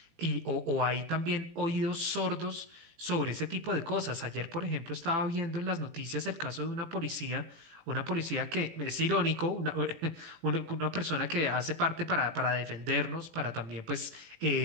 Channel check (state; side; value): late; left; 18 ms